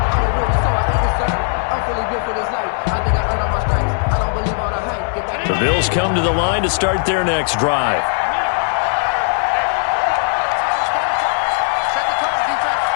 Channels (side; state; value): right; silent; digital silence